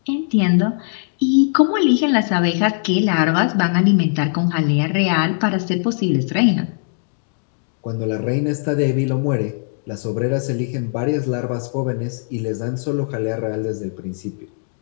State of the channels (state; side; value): silent; right; digital silence